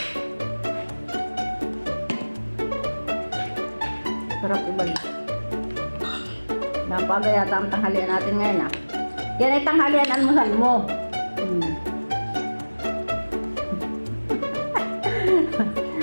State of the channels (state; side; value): inverted; both; correlation -1.00